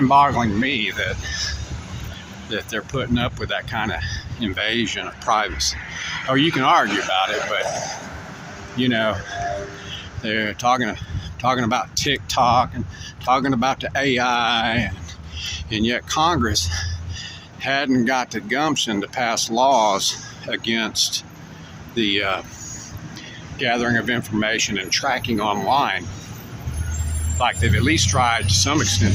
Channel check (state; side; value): identical; both; correlation 1.00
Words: to me that they're putting up with that kind of invasion of privacy. Or you can argue about it, but, you know, they're talking about TikTok and talking about the AI, and yet Congress hadn't got the gumption to pass laws against the gathering of information and tracking online, like they've at least tried to some